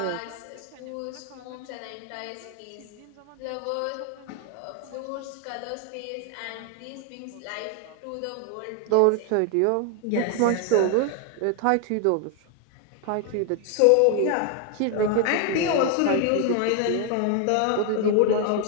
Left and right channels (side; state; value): both; different; correlation 0.01